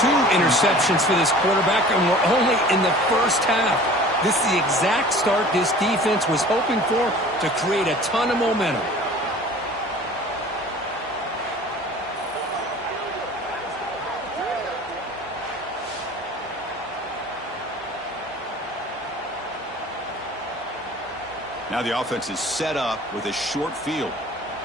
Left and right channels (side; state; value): right; noise; hum, 27 dB below the sound